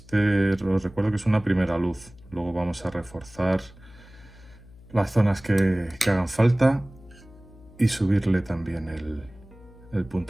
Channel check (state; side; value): noise; left; hum, 22 dB below the sound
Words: recuerdo que es una primera luz. Luego vamos a reforzar las zonas que hagan falta y subirle también el